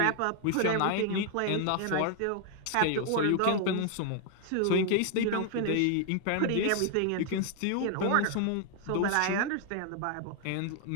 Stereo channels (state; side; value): different; both; correlation 0.00